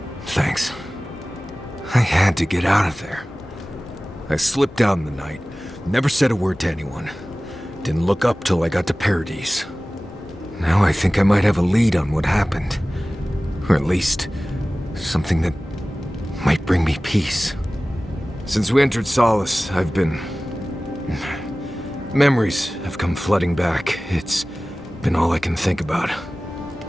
Thanks. I had to get out of there. I slipped out in the night, never said a word to anyone. Didn't look up till I got to Paradise. Now I think I might have a lead on what happened. Or at least, something that might bring me peace. Since we entered Solace, I've been... Memories have come flooding back. It's been all I can think about.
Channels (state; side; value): normal; both; correlation 0.97